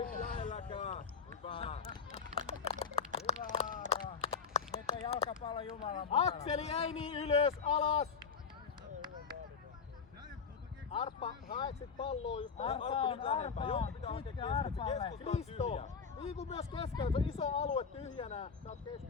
lähelläkään, hyvä. Hyvä Aaro. Nyt on jalkapallo Jumalan mukana. Akseli ei niin ylös, alas. Arppa, haet sit palloa just Arppa nyt lähempää, joku pitää hakea pitkä keskeltä, Arpalle. keskusta on Risto, tyhjä. liiku myös keskellä, se on iso alue tyhjänä. Sä oot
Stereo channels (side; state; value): right; quieter; 5.9 dB